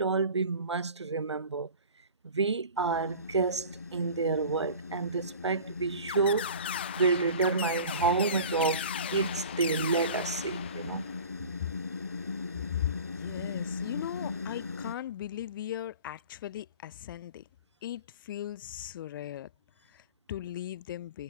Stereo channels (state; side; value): inverted; both; correlation -0.40